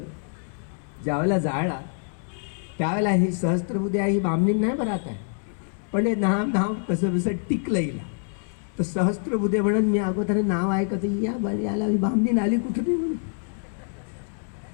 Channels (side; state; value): right; silent; 61 dB below the other